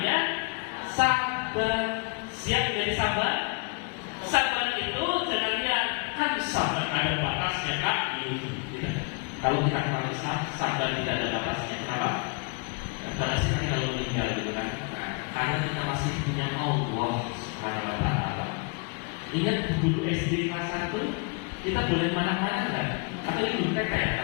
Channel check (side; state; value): right; quieter; 32.6 dB